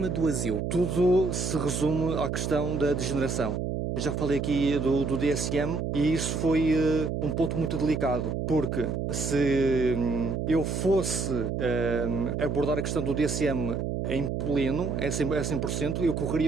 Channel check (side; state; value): right; noise; hum, 2 dB below the sound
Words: do asilo? Tudo se resume à questão da degeneração. Eu já falei aqui do DSM e isso foi um ponto muito delicado, porque se eu fosse abordar a questão do DSM em pleno, a 100%, eu